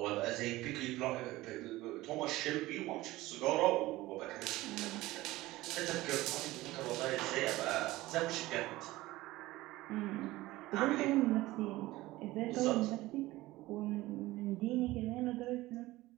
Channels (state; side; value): quieter; left; 18.2 dB